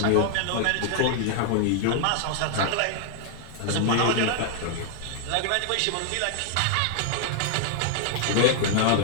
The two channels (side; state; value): both; different; correlation 0.00